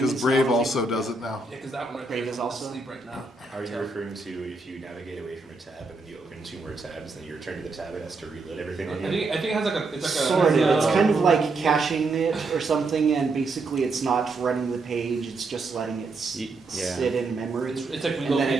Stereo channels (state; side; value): quieter; left; 3.6 dB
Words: because is Brave now- also does it now. Yeah, because that one Brave is also- asleep right now. Are you referring to if you navigate away from a tab and then you open 2 more tabs, then you return to the tab, it has to reload everything on you? I think it has like a Sort of. It's kind of like caching it or something, and basically it's not running the page. It's just letting it Yeah. sit in memory, It's like and then